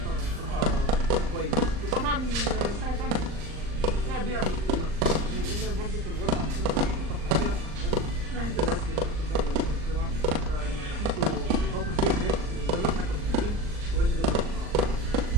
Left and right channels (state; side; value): late; left; 39 ms